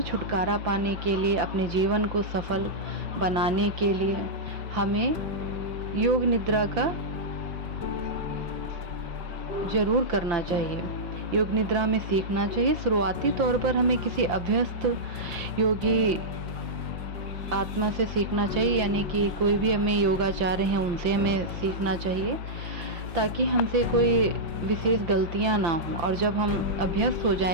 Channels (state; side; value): late; left; 5.9 ms